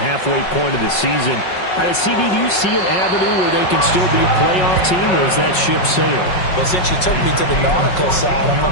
point of the season. CD, do you see an avenue where they can still be a playoff team, or is that ship sailed? Well, since you took me to the nautical side, I'm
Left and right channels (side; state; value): right; late; 5.4 ms